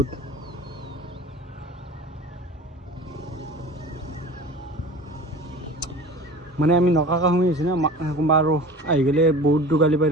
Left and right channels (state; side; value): normal; both; correlation 0.39